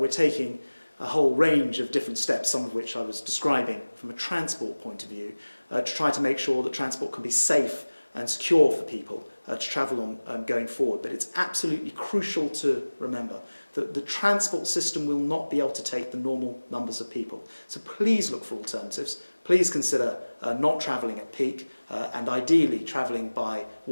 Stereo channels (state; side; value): inverted; both; correlation -1.00